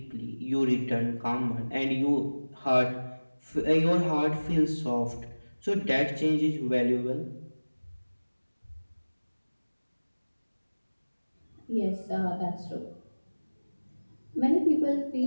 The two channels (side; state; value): both; inverted; correlation -1.00